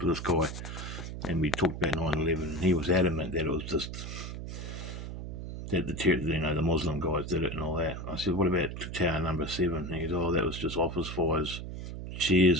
to this guy, and we talked about 9/11, and he was adamant that it was just that the Muslim guys did it and all that. I said, what about tower number 7? And he goes, that was just office fires,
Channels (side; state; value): right; noise; hum, 7 dB below the sound